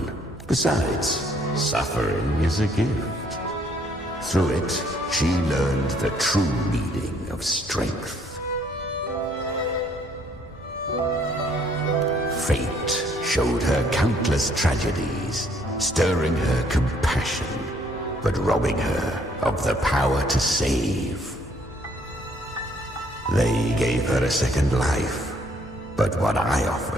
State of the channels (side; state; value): both; normal; correlation 0.65